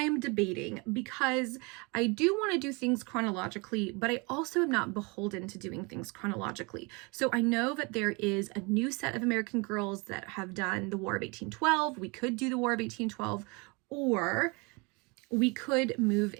debating because I do want to do things chronologically, but I also am not beholden to doing things chronologically. So I know that there is a new set of American Girls that have done the War of 1812. We could do the War of 1812, or we could move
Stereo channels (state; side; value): quieter; left; 29.1 dB